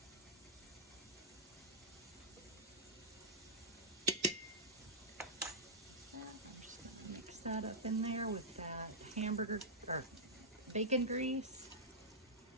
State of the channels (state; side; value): normal; both; correlation -0.11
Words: I'm just going to mix that up in there with that hamburger or bacon grease.